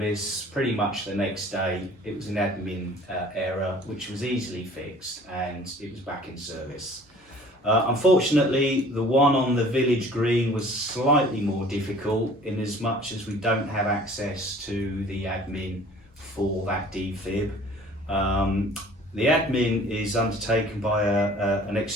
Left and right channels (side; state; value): both; normal; correlation 0.50